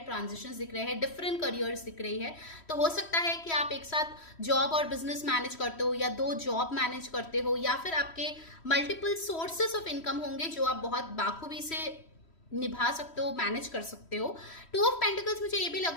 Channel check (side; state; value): right; late; 3.1 ms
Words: ट्रांजिशंस दिख रहे हैं, डिफरेंट करियर्स दिख रही है. तो हो सकता है कि आप एक साथ जॉब और बिजनेस मैनेज करते हो, या 2 जॉब मैनेज करते हो, या फिर आपके मल्टीपल सोर्सेस ऑफ इनकम होंगे जो आप बहुत बाखूबी से निभा सकते हो, मैनेज कर सकते हो. 2 ऑफ पेंटिकल्स मुझे ये भी लग